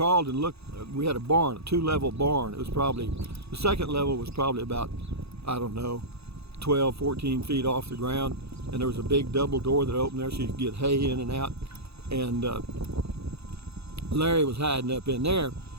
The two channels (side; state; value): left; late; 0.79 ms